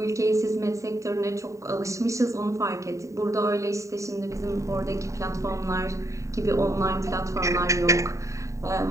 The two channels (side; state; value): left; late; 0.15 ms